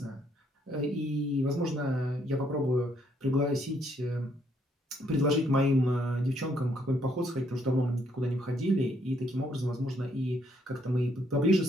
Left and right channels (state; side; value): normal; both; correlation 0.70